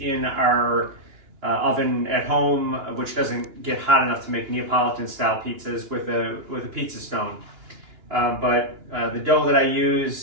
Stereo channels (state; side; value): late; left; 2.9 ms